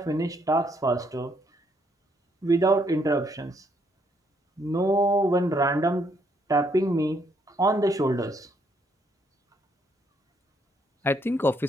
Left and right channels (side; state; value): both; normal; correlation 0.71